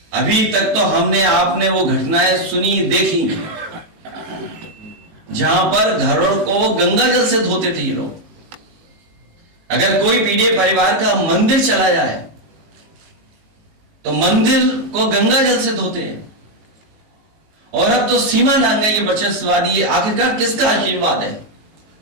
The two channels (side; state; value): left; late; 18 ms